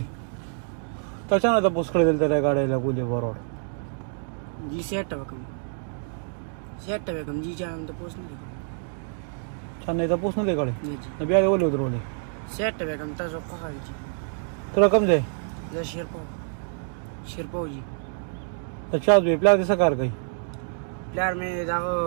तचाना तो पुष्कळ दिल त्या गाड्याला बोले बरोबर जी सेट बेगम जी जान तो पोस्ट नहीं छान नाही तर पोच नाही गाडी नहीं जी न बियाडे बोले उतरवले सेट बेगम तसो कहा जी तुला कम जाय जा शेरपाव जी तर चहा दे प्ला दिसा कार काही प्लेयर में जागो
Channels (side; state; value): left; silent; 60 dB below the other